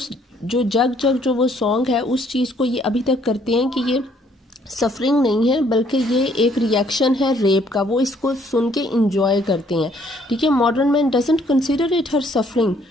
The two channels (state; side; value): normal; both; correlation 0.64